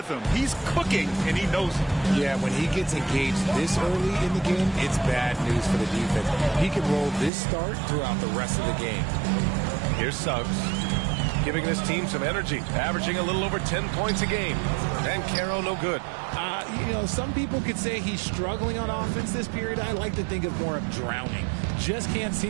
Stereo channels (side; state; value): left; drops out; at 7.3 s